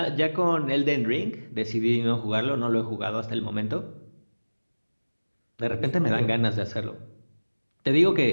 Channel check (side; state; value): both; inverted; correlation -1.00